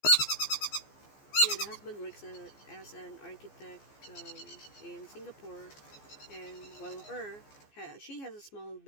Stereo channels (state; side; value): late; right; 14 ms